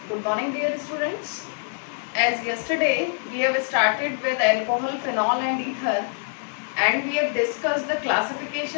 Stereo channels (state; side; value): silent; right; 62 dB below the other